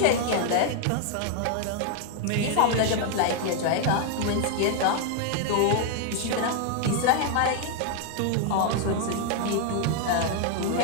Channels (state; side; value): different; both; correlation 0.00